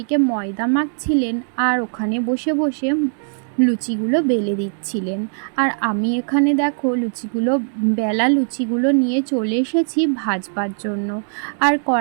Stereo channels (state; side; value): silent; left; digital silence